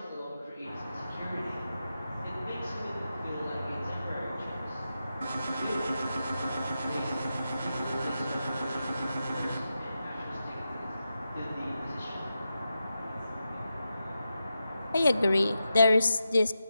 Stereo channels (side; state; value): both; inverted; correlation -0.89